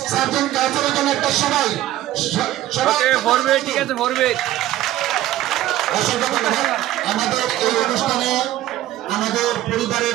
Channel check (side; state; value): left; quieter; 14.2 dB